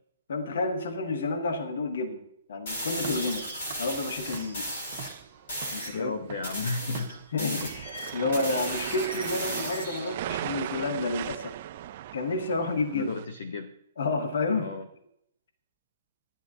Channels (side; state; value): both; inverted; correlation -0.57